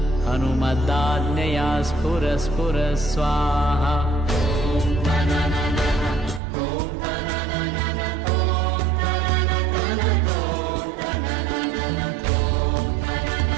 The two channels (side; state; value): left; drops out; at 6.4 s